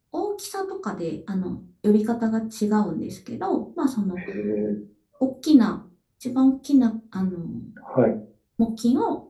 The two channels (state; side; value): identical; both; correlation 1.00